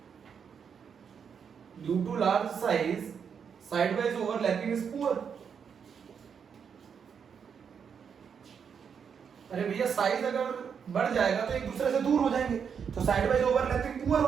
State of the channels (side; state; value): left; quieter; 6.9 dB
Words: due to large size side wise overlapping is poor. अरे भैया साइज अगर बढ़ जाएगा तो एक दूसरे से दूर हो जाएंगे, तो साइड वाइज ओवरलैपिंग पुअर